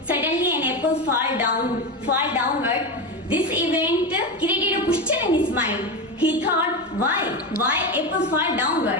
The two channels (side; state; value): both; normal; correlation 0.17